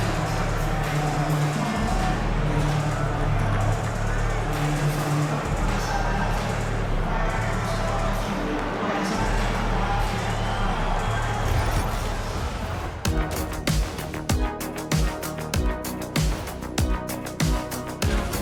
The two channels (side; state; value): both; identical; correlation 1.00